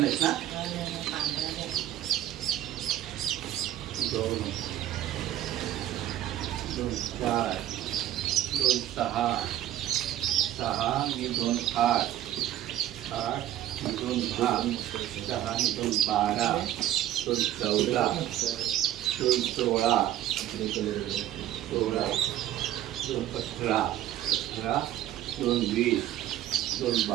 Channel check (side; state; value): left; quieter; 12.7 dB